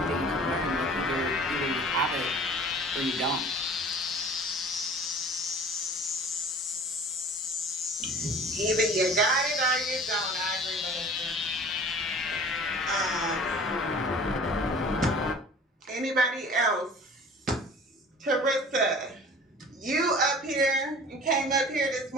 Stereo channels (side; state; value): both; normal; correlation 0.44